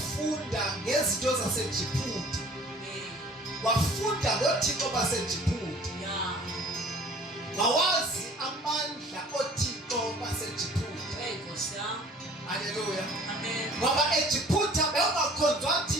ngezinto zaseJiphuta. Amen. Wafunda ngoThixo baseJiphuta. Yeah. Wawazi amandla oThixo baseJiphuta. Hey, Kosia. Haleluya. Amen. Ngoba eJiphuta bekungakhonzwa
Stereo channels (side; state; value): both; normal; correlation 0.51